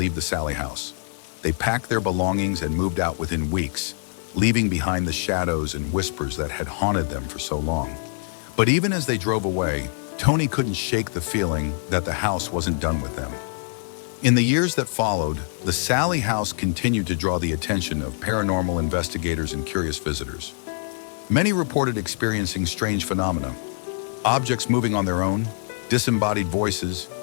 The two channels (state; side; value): silent; right; digital silence